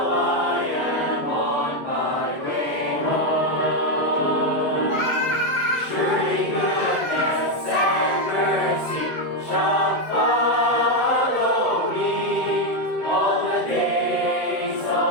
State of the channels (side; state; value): right; late; 7.5 ms